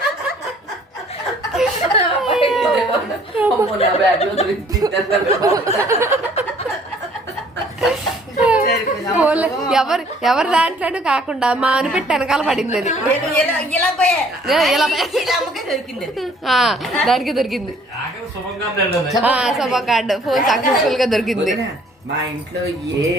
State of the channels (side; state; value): both; normal; correlation 0.58